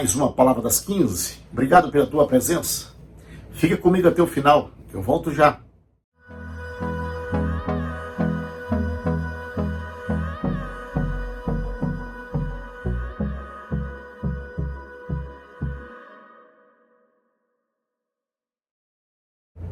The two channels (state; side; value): identical; both; correlation 1.00